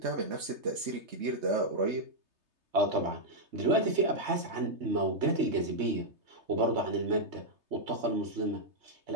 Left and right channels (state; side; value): late; left; 3.3 ms